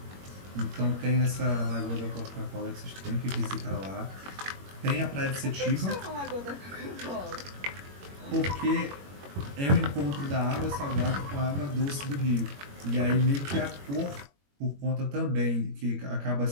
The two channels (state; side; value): late; left; 21 ms